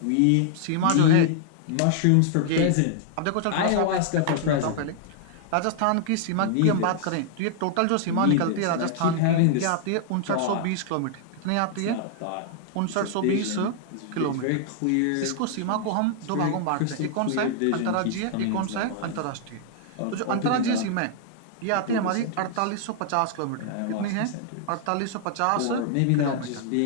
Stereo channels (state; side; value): different; both; correlation -0.01